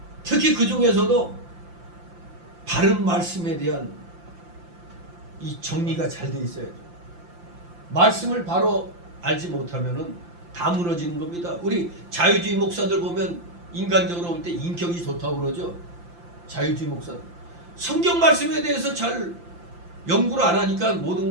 특히 그 중에서도 바른 말씀에 대한 이 정리가 잘 돼 있어야죠. 말씀을 바로 알지 못하면은 다 무너지는 겁니다. 우리 자유주의 목사들 보면 인간적으로 볼 때 인격이 좋다고 그러죠. 자유주의 목사들. 성경 말씀에 대해서 잘 연구를 안 하니까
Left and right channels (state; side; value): late; left; 5.8 ms